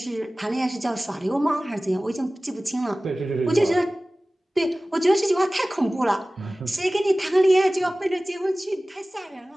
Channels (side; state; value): both; normal; correlation 0.98